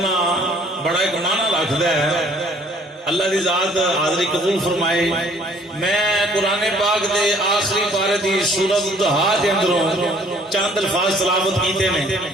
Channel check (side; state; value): both; normal; correlation 0.58